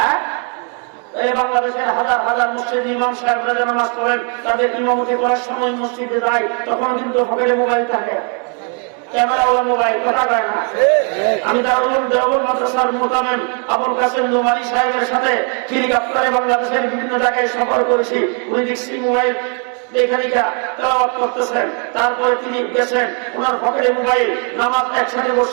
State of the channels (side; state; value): left; quieter; 39.7 dB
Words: এই বাংলাদেশের হাজার হাজার মসজিদ ইমাম সাহেবরা নামাজ পড়েন, তাদের ইমামতি করার সময় মসজিদে যায়, তখন কিন্তু পকেটে মোবাইল থাকে, ক্যামেরাওয়ালা মোবাইল। কথা কয় না? আমি দারুল দেওবন্দ মাদ্রাসার মুতামিম আবুল কাসেম নোমানী সাহেবের সাথে হেলিকপ্টারে বাংলাদেশের বিভিন্ন জায়গায় সফর করেছি। উনি দেখছি মোবাইল লেখালিকা তেলাওয়াত করতেছেন, তারপরে তিনি গেছেন, ওনার পকেটে মোবাইল। নামাজ একসাথে